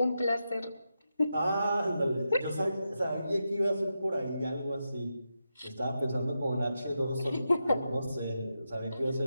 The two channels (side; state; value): both; inverted; correlation -0.87